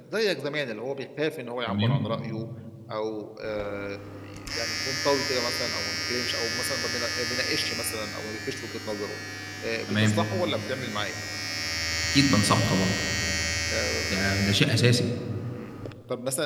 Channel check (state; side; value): identical; both; correlation 1.00